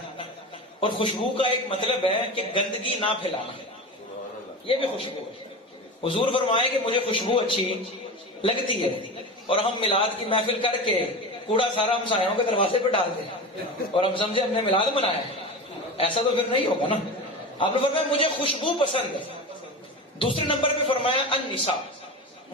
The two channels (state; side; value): normal; both; correlation 0.27